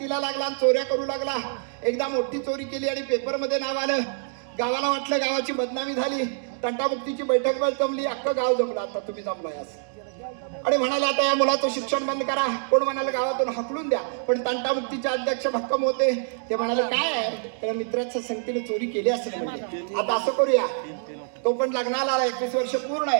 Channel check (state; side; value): silent; left; digital silence